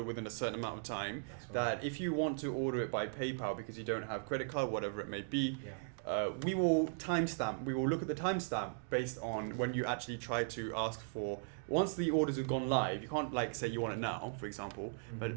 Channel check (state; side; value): silent; left; digital silence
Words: within a certain amount of time. That's right. That if you want to order it by PayPal because you don't have credit card, whatever it may be, Yeah. we will timestamp. We will look at the timestamp based on when you actually try to ask for. Once the orders have gone live, you can't say you want it now, for example. Mm-hmm.